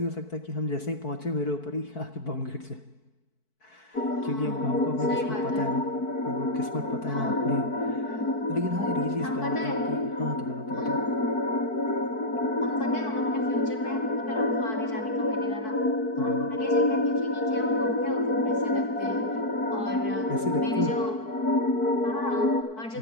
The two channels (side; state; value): right; late; 4.6 ms